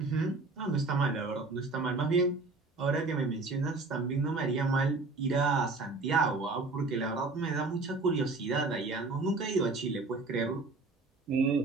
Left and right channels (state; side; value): quieter; left; 3.6 dB